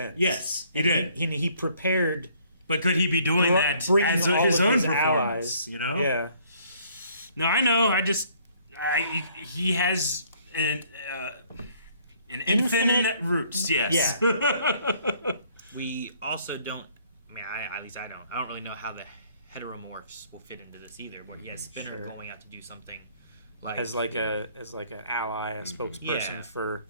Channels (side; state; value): both; inverted; correlation -0.62